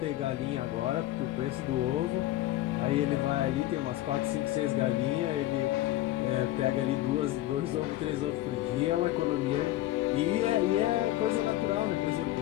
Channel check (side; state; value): right; quieter; 15.2 dB